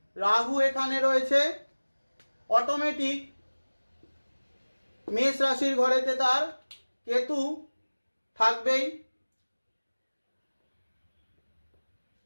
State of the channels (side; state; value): both; inverted; correlation -1.00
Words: রাহু এখানে রয়েছে অটোমেটিক মেষ রাশির ঘরেতে তার কেতু থাকবেই।